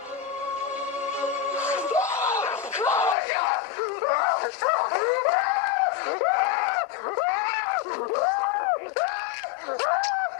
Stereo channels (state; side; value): drops out; right; at 3.2 s